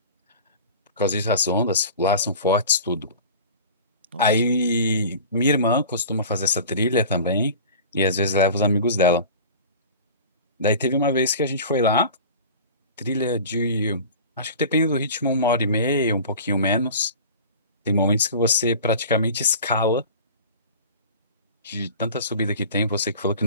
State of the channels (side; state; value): both; inverted; correlation -0.39